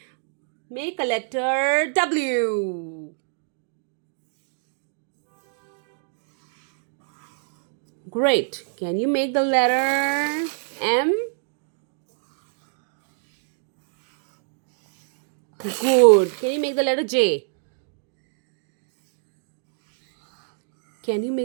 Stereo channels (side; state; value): left; silent; digital silence